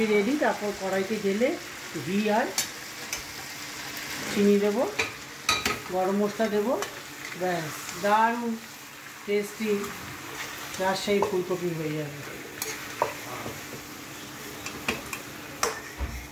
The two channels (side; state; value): both; identical; correlation 1.00